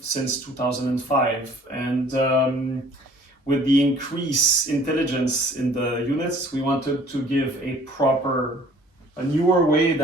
since 2005, and with the increased intelligence in the units, we wanted to give a newer way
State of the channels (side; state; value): both; normal; correlation 0.54